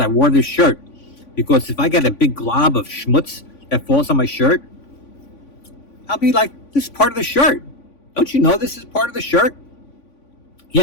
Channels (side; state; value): right; late; 3.5 ms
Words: wore this shirt. Because if I get a big glob of schmutz that falls on my shirt, I'll be like, this is part of the shirt. Don't you know this is part of the shirt?